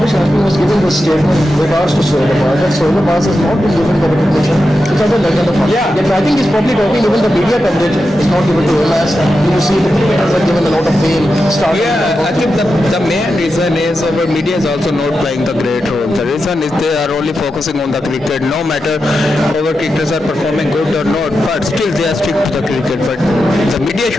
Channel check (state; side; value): normal; both; correlation 0.89